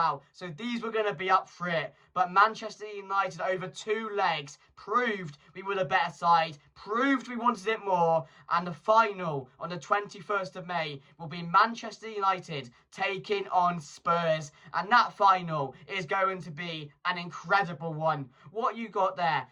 so these were going to be up for it. But Manchester United over 2 legs proved we were the better side, proved we wanted it more, and the final on the 21st of May will be Manchester United taking on Spurs, and that final is going to be an incredible one. What you got there?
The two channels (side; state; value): both; identical; correlation 1.00